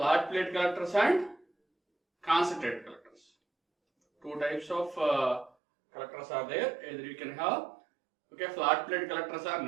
plate collectors and concentrated collectors. Two types of collectors are there. Either you can have flat plate collectors are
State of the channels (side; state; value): left; drops out; at 5.5 s